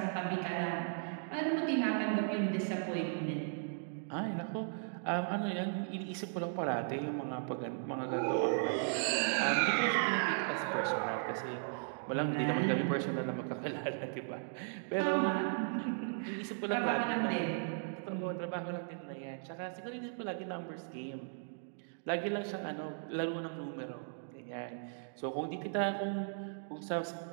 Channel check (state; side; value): silent; left; digital silence